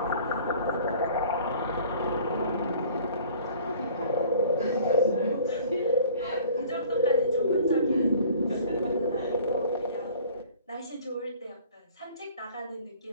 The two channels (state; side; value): inverted; both; correlation -0.50